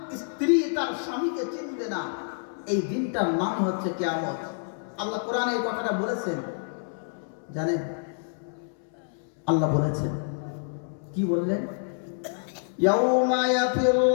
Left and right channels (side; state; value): right; silent; 60 dB below the other